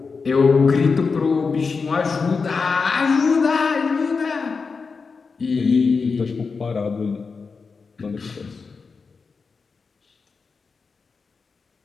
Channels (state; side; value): quieter; right; 4.9 dB